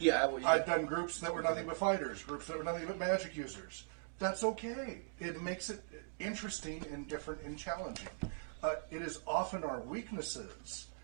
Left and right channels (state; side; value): silent; left; digital silence